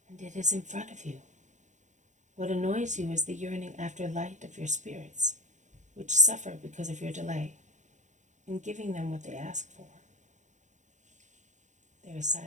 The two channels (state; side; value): late; left; 0.35 ms